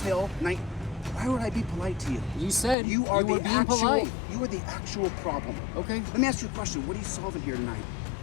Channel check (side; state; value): right; drops out; at 2.8 s